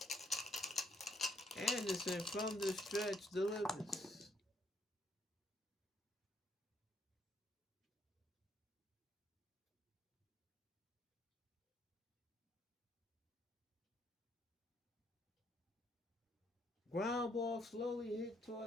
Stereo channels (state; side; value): normal; both; correlation 0.71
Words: Anderson from the stretch delivers. Ground ball slowly hit